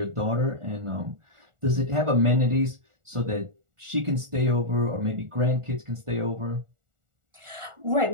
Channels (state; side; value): late; left; 1.4 ms